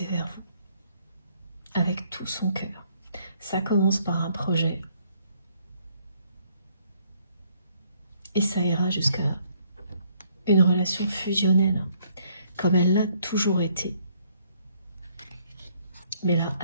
vers vous avec tout son cœur. Ça commence par un projet et ça ira jusque là. Une relation fusionnelle, comme elle l'a toujours été, mais elle a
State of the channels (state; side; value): inverted; both; correlation -0.67